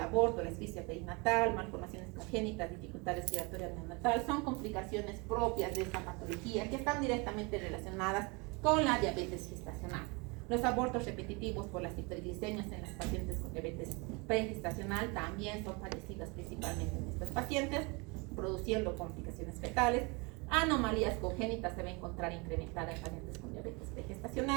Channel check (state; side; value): quieter; left; 28.8 dB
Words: la asfixia perinatal, malformaciones congénitas, dificultad respiratoria neonatal son complicaciones propias de esta patología que están directamente relacionadas con la diabetes gestacional. Los abortos repetitivos por las hiperglicemias en las pacientes con diabetes pregestacional también son padecidas principalmente en estas pacientes, produciendo complicaciones fetales. Anomalías congénitas se va a encontrar incrementada en pacientes con diabetes